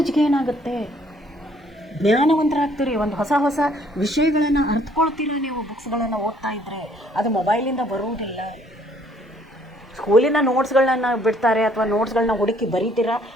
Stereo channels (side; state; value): both; normal; correlation 0.63